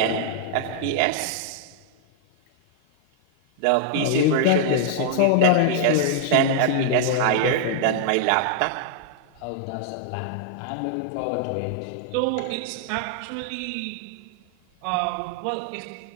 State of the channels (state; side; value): different; both; correlation -0.01